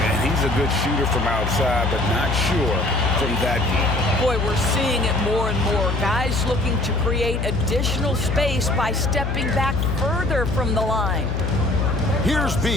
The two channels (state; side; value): noise; left; hum, 2 dB below the sound